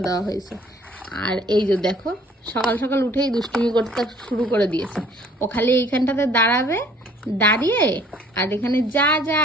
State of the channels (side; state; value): both; normal; correlation 0.57